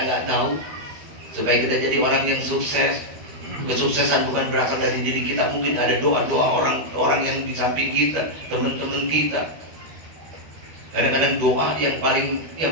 tahu, supaya kita jadi orang yang sukses. Kesuksesan bukan berasal dari diri kita. Mungkin ada doa-doa orang yang di samping kita, teman-teman kita. Kadang-kadang doa yang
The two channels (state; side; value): late; left; 13 ms